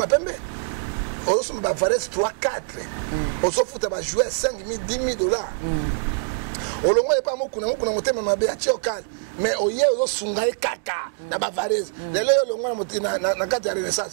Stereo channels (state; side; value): silent; left; digital silence